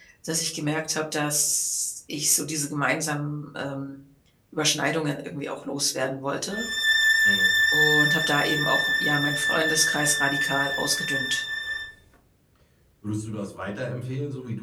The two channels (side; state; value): both; identical; correlation 1.00